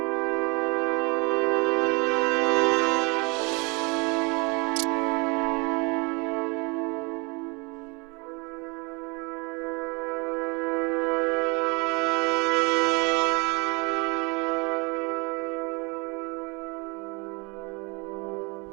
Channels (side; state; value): left; quieter; 29.3 dB